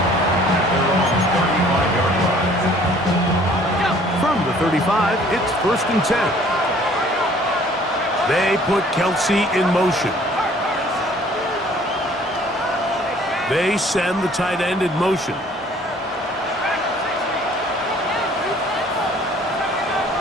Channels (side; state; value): both; normal; correlation 0.55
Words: From the 35, it's 1st and 10. They put Kelsey in motion. They send the tight end in motion.